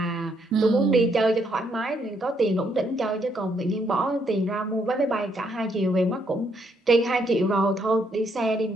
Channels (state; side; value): normal; both; correlation 0.73